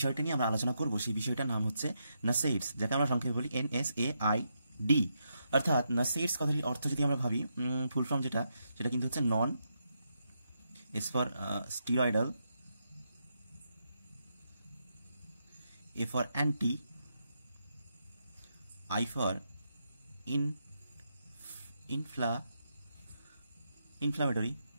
নিয়ে আমরা আলোচনা করব সেই বিষয়টার নাম হচ্ছে নাসেইডস, যাকে আমরা সংক্ষেপে বলি NSAID। অর্থাৎ নাসেইডস কথাটির অর্থ যদি আমরা ভাবি, ফুল ফর্ম সেটা কিন্তু হচ্ছে non, S for steroidal, A for anti, I for inflammatory,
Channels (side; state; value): both; inverted; correlation -0.82